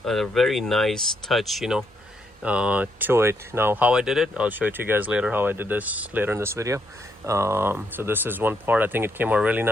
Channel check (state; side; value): normal; both; correlation 0.76